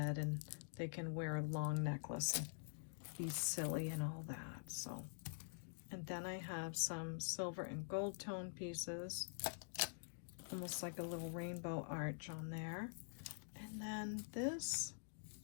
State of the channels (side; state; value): right; silent; digital silence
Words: and they can wear a long necklace and be silly and all that. So, and then I have some silver and gold tone pieces, almost like a little rainbow arch on there. And then this